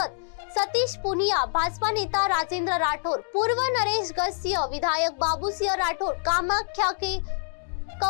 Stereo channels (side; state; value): right; silent; digital silence